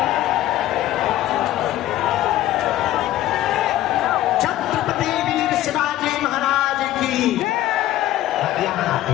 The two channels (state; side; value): quieter; right; 14.1 dB